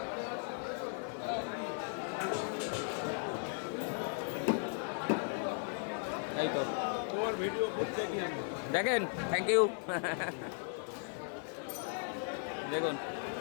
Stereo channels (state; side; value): silent; right; 53 dB below the other